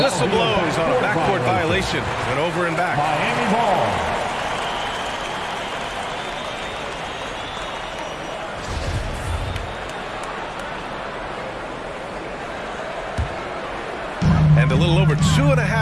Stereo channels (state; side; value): identical; both; correlation 1.00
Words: whistle blows on a backcourt violation. Went over and back. Miami ball. And a little over